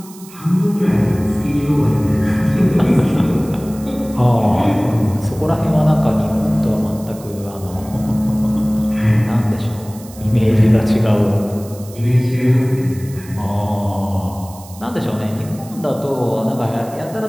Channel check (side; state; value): right; noise; hiss, 20 dB below the sound